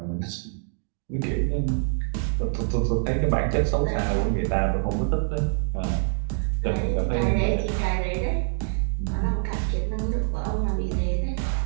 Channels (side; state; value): left; silent; digital silence